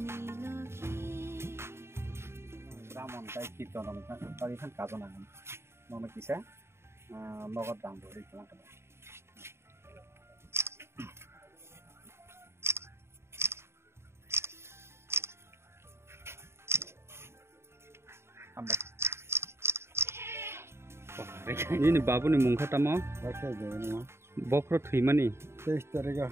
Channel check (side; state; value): left; late; 0.12 ms